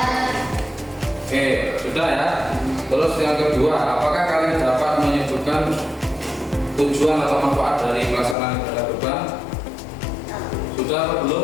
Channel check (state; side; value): drops out; right; at 8.3 s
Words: Oke, sudah ya. Terus yang kedua, apakah kalian dapat menyebutkan tujuan atau manfaat dari pelaksanaan ibadah kurban? Sudah atau